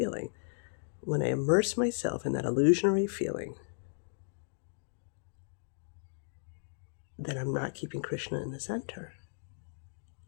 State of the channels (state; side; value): silent; right; digital silence